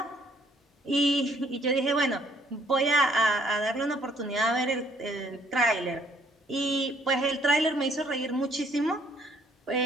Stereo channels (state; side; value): normal; both; correlation 0.64